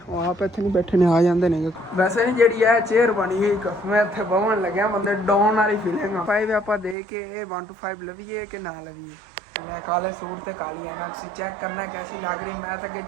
ਉਹ ਆਪ ਇੱਥੇ ਨਹੀਂ ਬੈਠੇ ਨੇ, ਆ ਜਾਂਦੇ ਨੇ। ਵੈਸੇ ਨਹੀਂ ਜਿਹੜੀ ਇਹ ਚੇਅਰ ਬਣੀ ਹੋਈ ਮੈਂ ਇੱਥੇ ਬਵਣ ਲੱਗਿਆ, ਬੰਦੇ ਡਾਊਨ ਵਾਲੀ ਫੀਲਿੰਗ ਆ। 5 ਆਪਾਂ ਦੇ ਕੇ ਇਹ 1 to 5 ਲਵੀਏ ਕਿ ਨਾ ਲਵੀਏ। ਮੈਂ ਕਾਲੇ ਸੂਟ ਤੇ ਕਾਲੀ ਹੈ ना, ਤੁਸੀਂ ਚੈੱਕ करना कैसी लग रही। मैं तो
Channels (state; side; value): drops out; left; at 7.0 s